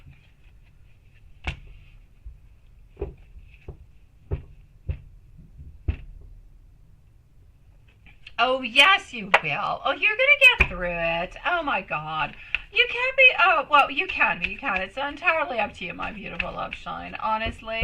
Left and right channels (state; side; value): identical; both; correlation 1.00